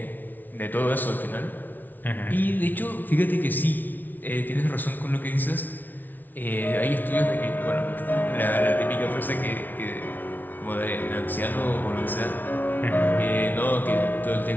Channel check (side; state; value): right; late; 0.085 ms